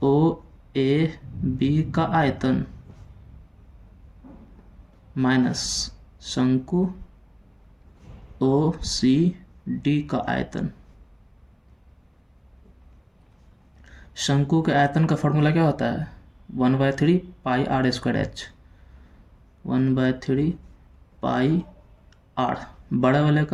ओ ए बी का आयतन माइनस शंकु ओ सी डी का आयतन। शंकु के आयतन का फॉर्मूला क्या होता है, 1/3 pi r square h. 1/3 pi r, बड़े वाले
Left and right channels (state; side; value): identical; both; correlation 1.00